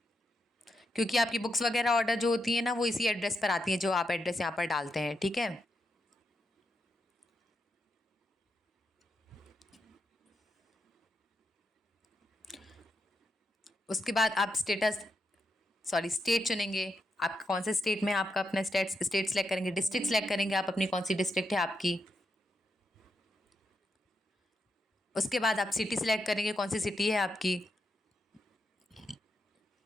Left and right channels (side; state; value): both; normal; correlation 0.84